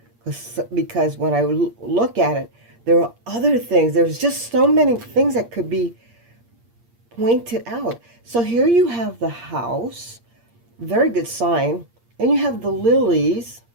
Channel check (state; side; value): late; left; 8.6 ms